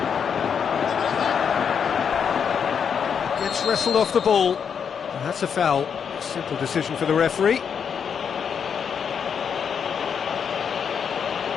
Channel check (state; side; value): quieter; right; 7.1 dB